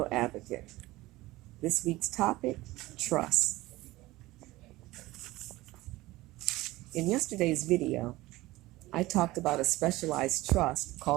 advocate. This week's topic, trust. In yesterday's video, I talked about a specialized trust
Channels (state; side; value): quieter; left; 18.8 dB